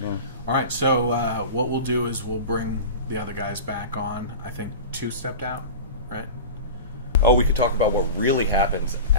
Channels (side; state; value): both; inverted; correlation -0.31